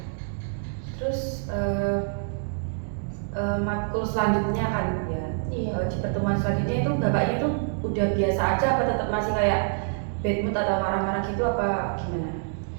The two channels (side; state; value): left; silent; digital silence